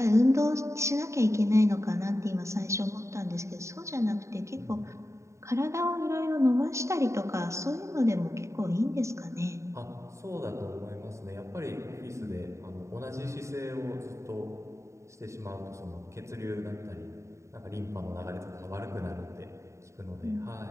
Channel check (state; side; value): late; left; 0.14 ms